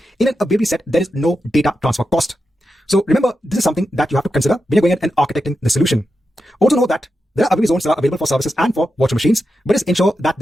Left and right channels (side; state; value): both; normal; correlation 0.89